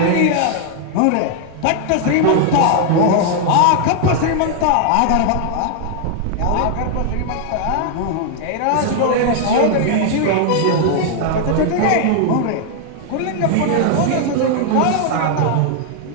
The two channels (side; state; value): both; different; correlation 0.00